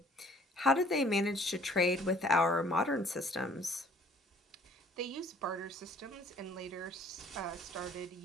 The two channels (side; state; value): both; normal; correlation 0.57